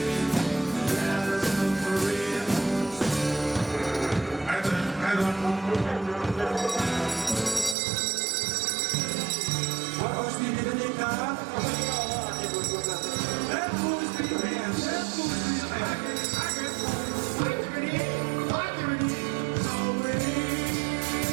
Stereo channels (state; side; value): drops out; left; at 7.8 s